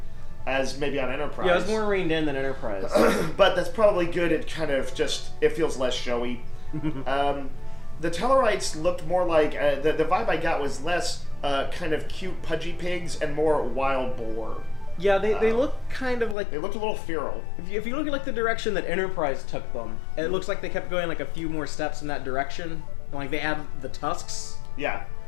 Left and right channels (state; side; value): drops out; right; at 16.4 s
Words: as maybe on Enterprise. Yeah, it was more reined in than Enterprise. But that's probably good. It kind of it feels less showy. The Tellarites looked more like, the vibe I got was less kind of cute pudgy pigs and more wild boar. Yeah, they look kind of like... They looked a little feral. If you look at like the direction that Enterprise took them, it looks like they kept going like a few more steps in that direction. Like they add the tusks. Yeah.